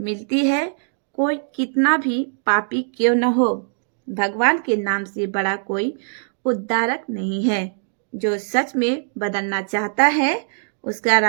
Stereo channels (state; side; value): silent; left; digital silence